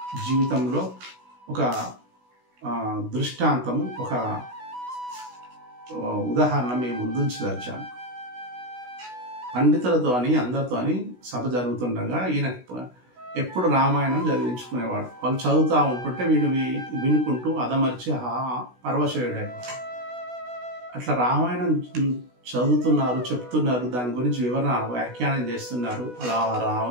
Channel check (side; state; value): left; late; 16 ms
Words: జీవితంలో ఒక దృష్టాంతం, ఒక ఉదాహరణ మేము ముందుంచదలిచాను. పండితులతో అని అందరితో అని సభ జరుగుతుండగా ఈయన ఎప్పుడు రామాయణం చదివించుకునేవాడు. వాళ్ళు చదువుతూ ఉంటుంటే వీడు వినుకుంటూ అదమర్చి పరవశయుడేవాడు. అట్లా రామాయణం చదువుతున్నారు, చెప్తున్నారు, దాని గురించి వివరణ వ్యాఖ్యానం చేస్తున్నారు. అలా